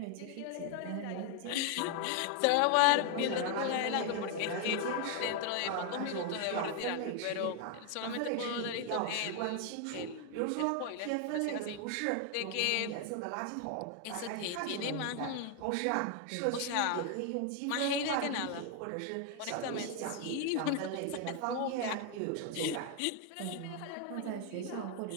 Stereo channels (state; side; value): different; both; correlation 0.00